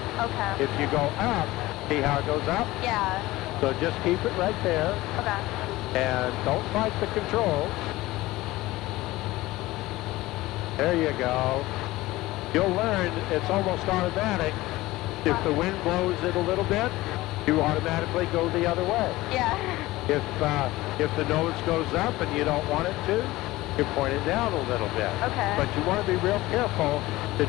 Okay. If you go up, see how it goes up? Yeah. So just keep it right there. Okay. And don't fight the controls. There you go. You'll learn it's almost automatic. If the wind blows it a little bit, you automatically go the other way. Yeah. If the nose goes up and you don't want it to, you point it down a little bit. Okay. But you want to be real careful to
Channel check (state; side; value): quieter; right; 18.4 dB